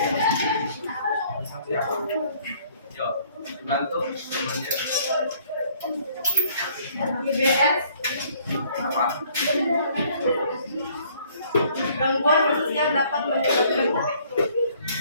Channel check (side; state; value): both; inverted; correlation -0.60